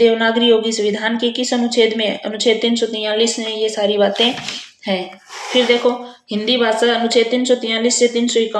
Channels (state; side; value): identical; both; correlation 1.00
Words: होगी। संविधान के किस अनुच्छेद में? अनुच्छेद 343 में ये सारी बातें हैं। फिर देखो, हिंदी भाषा अनुच्छेद 343 से